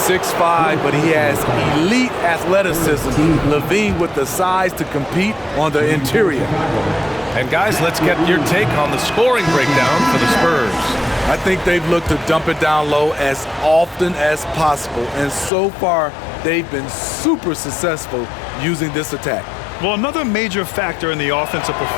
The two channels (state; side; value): drops out; right; at 15.5 s